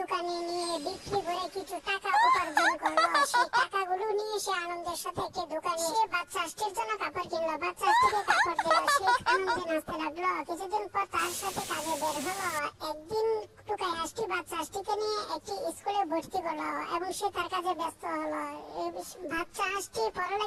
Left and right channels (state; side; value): identical; both; correlation 1.00